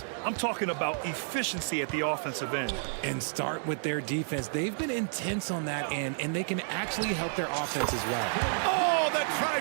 I'm talking about efficiency at the offensive end. And start with their defense. They've been intense on that end, and they can actually help their offense as well. Oh, the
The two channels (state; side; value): silent; left; 55 dB below the other